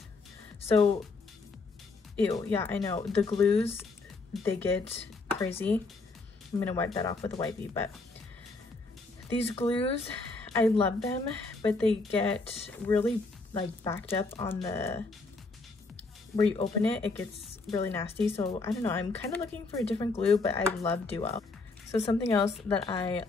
So, ew, yeah, I know. The glues, they get crazy. I'm gonna wipe that off with a wipey, but these glues, I love them, but they get really like backed up on the, where you open it, it gets really nasty. So I don't know, I'm kind of looking for a different glue, but I love Duo. So something else that I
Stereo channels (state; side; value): quieter; right; 3.7 dB